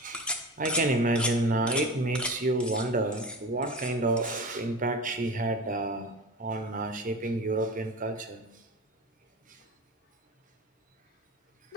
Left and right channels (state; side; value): normal; both; correlation 0.31